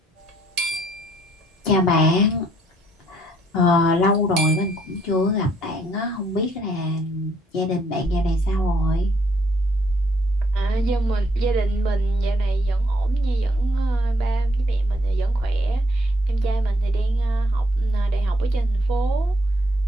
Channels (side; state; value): both; normal; correlation 0.68